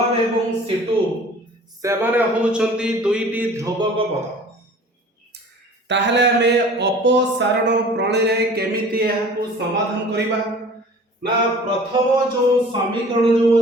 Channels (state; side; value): normal; both; correlation 0.46